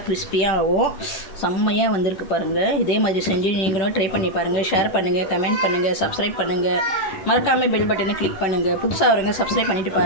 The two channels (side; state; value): right; late; 11 ms